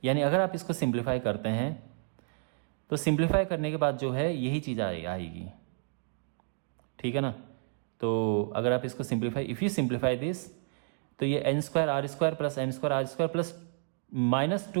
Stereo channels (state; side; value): silent; left; digital silence